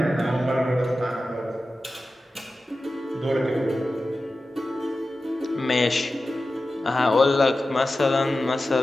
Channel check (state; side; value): normal; both; correlation 0.94